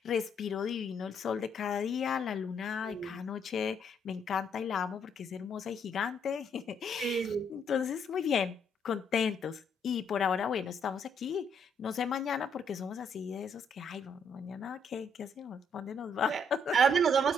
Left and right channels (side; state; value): both; normal; correlation 0.71